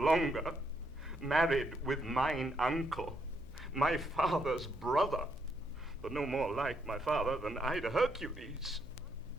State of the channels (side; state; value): left; noise; hum, 17 dB below the sound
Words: married with mine uncle, my father's brother, but no more like my father than I to Hercules.